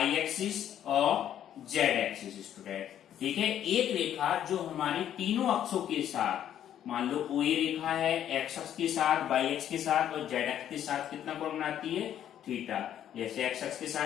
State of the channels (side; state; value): right; quieter; 10.5 dB